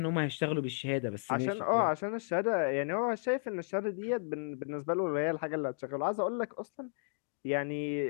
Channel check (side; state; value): right; silent; digital silence